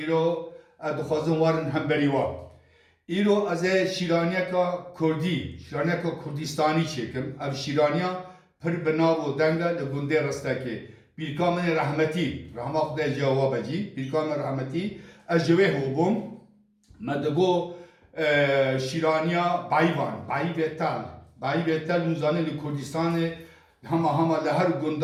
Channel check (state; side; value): identical; both; correlation 1.00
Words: îro ez dixwazim warin hemberî wa. İro ez ê şîraniyeka Kurdî, şîraniyeka Kurdistanî çêkim. Ev şîraniya pir bi nav û deng e li gundê Ristekê. Pîrka min ê rehmetî, rahma Xwedê cewab cî, pîrka min rehmetî, ez ji wê hûbûm. Me digo şîraniya Bayvan, Bayî Tel. Bayî Tel hûn zanîn li Kurdistanê hema li her